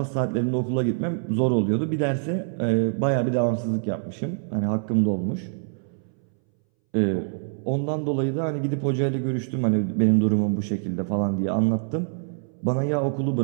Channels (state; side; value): silent; left; 62 dB below the other